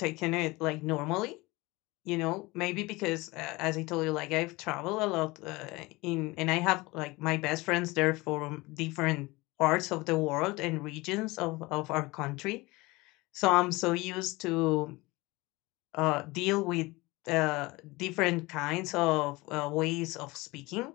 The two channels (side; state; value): right; quieter; 22.4 dB